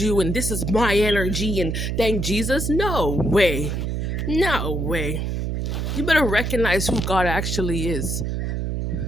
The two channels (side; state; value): right; noise; hum, 1 dB below the sound